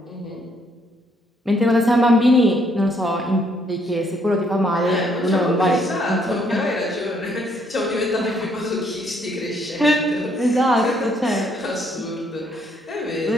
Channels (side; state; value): both; normal; correlation 0.69